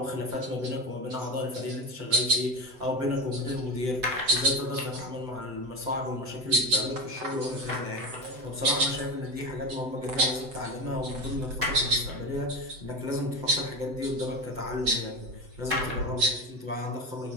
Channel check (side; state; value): left; late; 7.9 ms